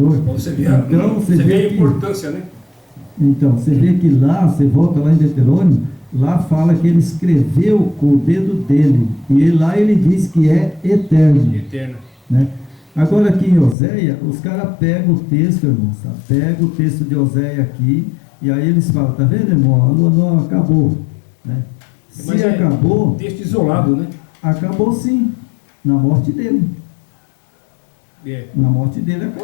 Você vê, então, você vê a importância, né? Então, você vê que lá, você volta lá em Deuteronômio, lá fala que ele escreveu com o dedo dele. E lá ele diz que é eterno. Eterno. Né? Agora aqui em Oséia, os caras pegam o texto, irmãos, tá? Pegam o texto de Oséia aqui, e aí eles falam: tá vendo, irmão? A lua nova acabou. Né? Mas se acabou, texto isolado, né? Acabou sim, na morte dele. Na morte dele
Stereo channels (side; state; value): right; drops out; at 13.8 s